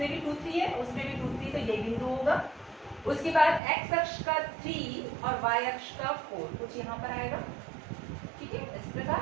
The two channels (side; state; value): left; drops out; at 3.6 s